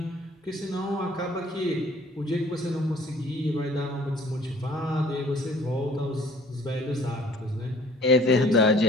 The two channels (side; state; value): both; normal; correlation 0.54